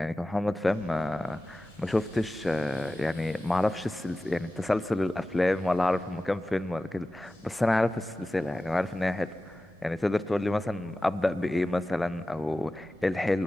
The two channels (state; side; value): normal; both; correlation 0.95